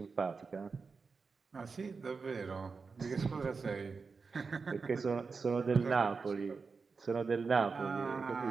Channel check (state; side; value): quieter; left; 4.8 dB